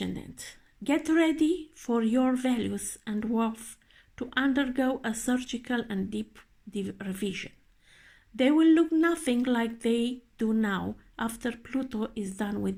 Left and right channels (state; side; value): identical; both; correlation 1.00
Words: get ready for your values and worth to undergo a surgical and deep revision. They will look nothing like they do now after Pluto is done